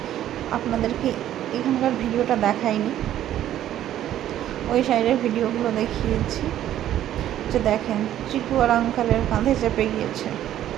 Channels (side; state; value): left; quieter; 12.0 dB